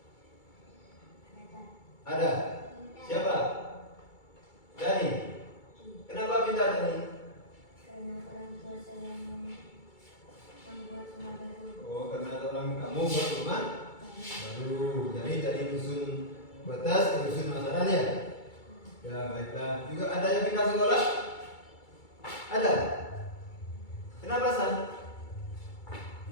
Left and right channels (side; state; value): right; late; 2.3 ms